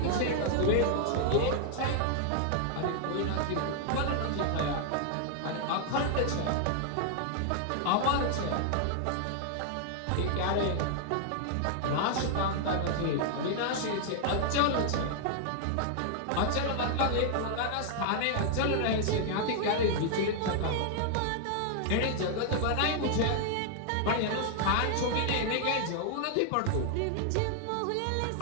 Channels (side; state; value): both; different; correlation 0.00